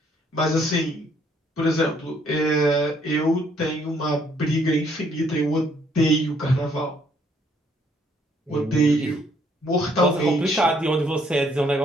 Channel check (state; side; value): normal; both; correlation 0.67